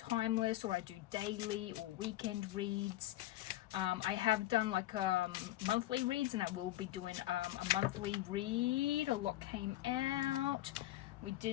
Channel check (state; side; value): quieter; right; 15.5 dB